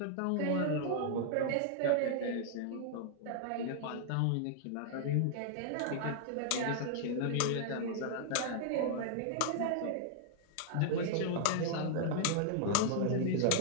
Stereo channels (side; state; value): both; different; correlation -0.01